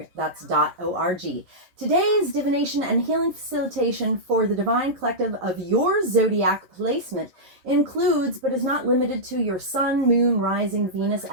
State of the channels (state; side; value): late; left; 11 ms